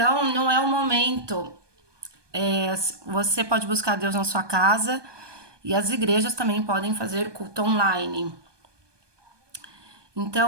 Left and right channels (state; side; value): late; left; 1.2 ms